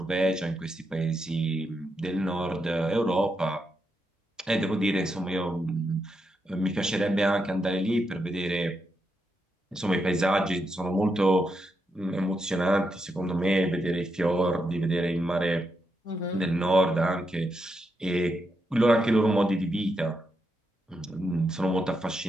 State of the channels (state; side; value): normal; both; correlation 0.83